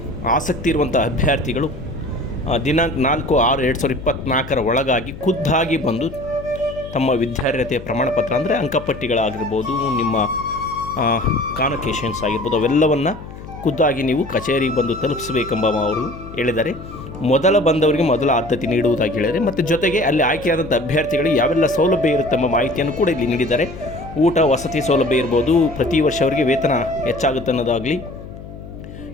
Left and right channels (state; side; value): noise; left; hum, 14 dB below the sound